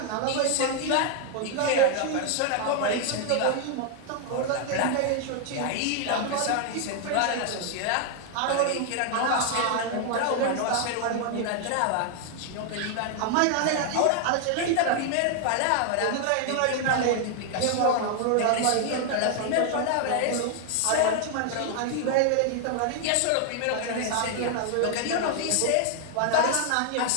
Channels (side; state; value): both; different; correlation 0.00